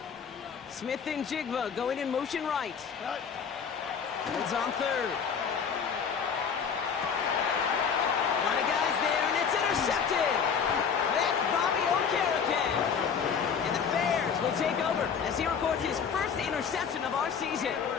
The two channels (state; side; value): quieter; right; 6.7 dB